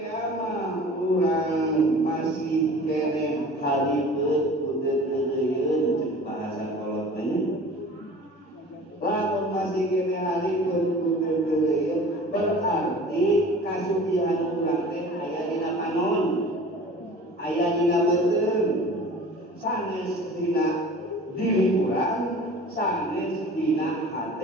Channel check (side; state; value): both; normal; correlation 0.42